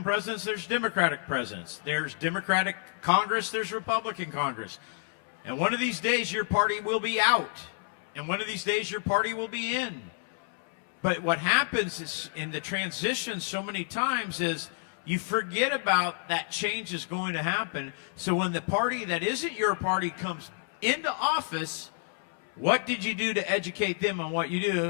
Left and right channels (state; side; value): silent; right; 56 dB below the other